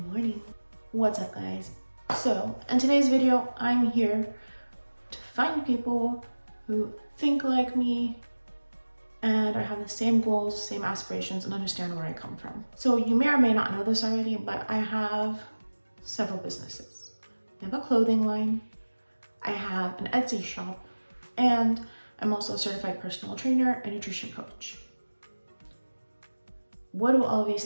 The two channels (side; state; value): both; inverted; correlation -1.00